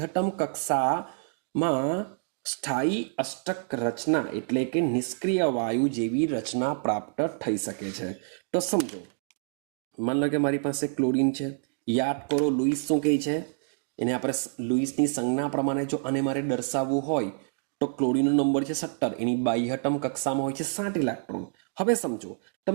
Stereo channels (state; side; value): silent; left; digital silence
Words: કક્ષામાં સ્થાયી અષ્ટક રચના એટલે કે નિષ્ક્રિય વાયુ જેવી રચના પ્રાપ્ત થઈ શકે છે. તો સમજો, માન લો કે મારી પાસે ક્લોરીન છે. યાદ કરો લુઈસ શું કહે છે? એને આપણે લુઈસની સંજ્ઞા પ્રમાણે જો આને મારે દર્શાવવું હોય તો ક્લોરીનનો નંબર છે 17, એની બાહ્યતમ કક્ષામાં હોય છે 7 ઇલેક્ટ્રોન. હવે સમજો,